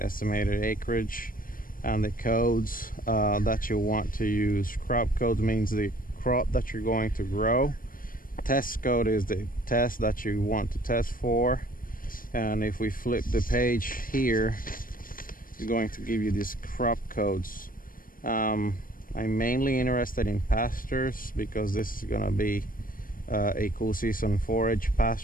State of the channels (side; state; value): right; late; 0.41 ms